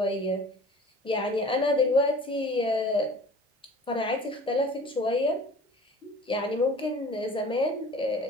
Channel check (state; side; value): normal; both; correlation 0.45